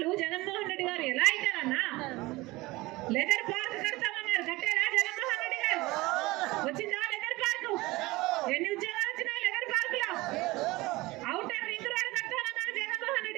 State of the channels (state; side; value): quieter; left; 20.9 dB